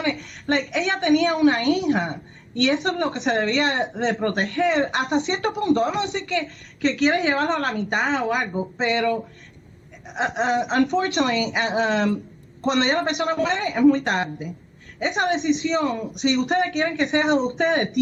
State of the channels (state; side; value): identical; both; correlation 1.00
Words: Like, ella tenía una hija. Y eso es lo que se debía de proteger hasta cierto punto. Vamos a decir que quieres llevarlo a la mitad o algo, pero unfortunately, cuando ya la persona muere es muy tarde. Esa decisión, si ustedes quieren que sea de ustedes,